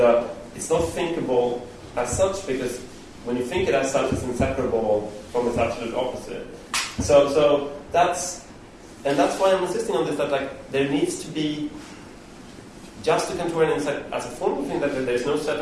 it's not thinkable as such, because when you think it as such, it's inseparable from its absolute opposite. So that's why I'm insisting on this, that there needs to be just a Kantorian as a formal thing, that there's no set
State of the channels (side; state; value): both; identical; correlation 1.00